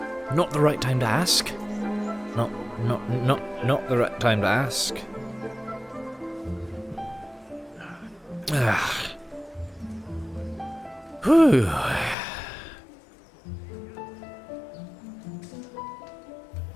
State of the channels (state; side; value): drops out; right; at 12.2 s